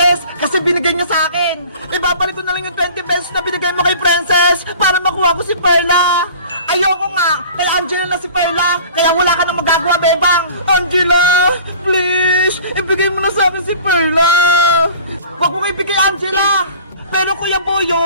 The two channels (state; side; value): inverted; both; correlation -0.44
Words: kasi binigay niya sa akin. Ibabalik ko na lang yung 20 pesos na binigay mo kay Princess para makuha ko si Perla. Ayoko nga, kay Angela na si Perla, kaya wala ka nang magagawa, Bebang. Angela, please, ibigay mo na sa akin si Perla. Huwag mo ibigay, Angela. Pero Kuya